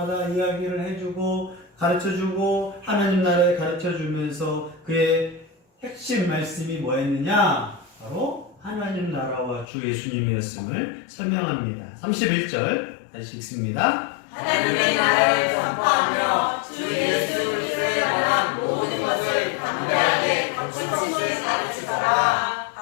이야기를 해주고 가르쳐주고 하나님 나라에 가르쳐주면서 그의 핵심 말씀이 뭐였느냐? 바로 하나님 나라와 주 예수님이었음을 설명합니다. 31절 다시 읽습니다. 하나님의 나라를 전파하며 주 예수 그리스도에 관한 모든 것을 담대하게 거침없이 가르치더라.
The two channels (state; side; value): drops out; right; at 9.7 s